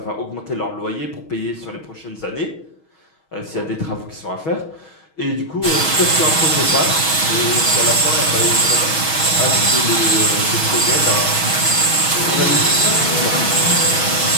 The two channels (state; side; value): late; right; 6.3 ms